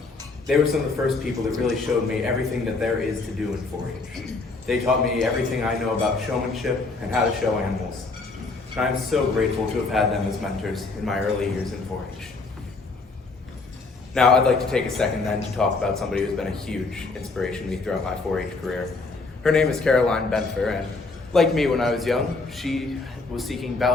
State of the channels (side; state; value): right; quieter; 3.7 dB